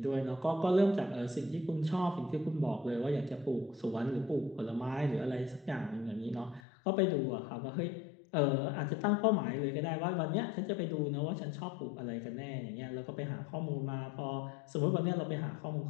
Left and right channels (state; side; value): drops out; right; at 6.6 s